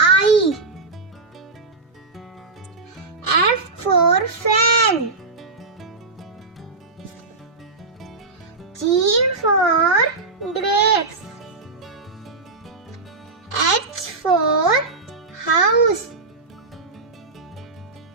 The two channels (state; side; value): quieter; left; 3.7 dB